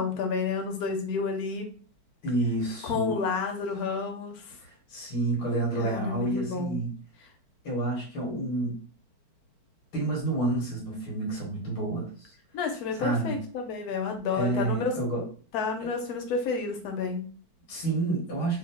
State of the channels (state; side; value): late; right; 4.5 ms